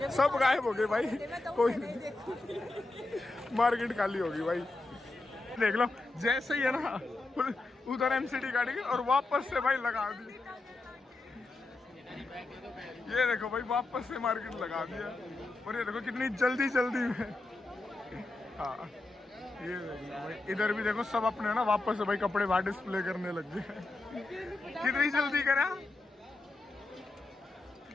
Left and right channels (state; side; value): quieter; right; 3.1 dB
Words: सब गायब हो गए भाई। कोई मार्केट खाली होगी भाई। देख लो जैसे ही है ना उधर एमसीडी गाड़ी की और वापस से भाई लगा दी। ये देखो भाई वापस से मार्केट लगा दिया और ये देखो कितनी जल्दी जल्दी में। हाँ ये देखो भाई इधर भी देखो सब अपने ना वापस से भाई कपड़े बाहर डिस्प्ले करने लग गए। कितनी जल्दी करा।